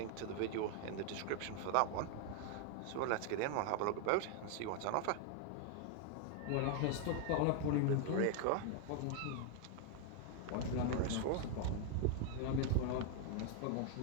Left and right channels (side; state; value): both; different; correlation 0.00